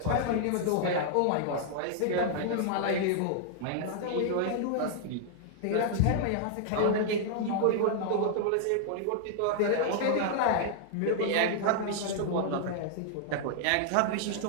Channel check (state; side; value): different; both; correlation -0.01